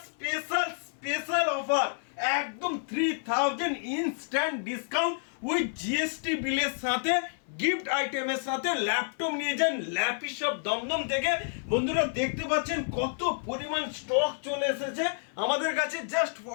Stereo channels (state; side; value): silent; right; 55 dB below the other